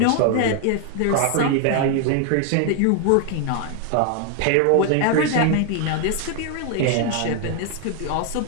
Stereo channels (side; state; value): both; different; correlation 0.00